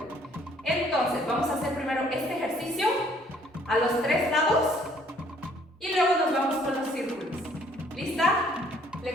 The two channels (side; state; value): both; normal; correlation 0.61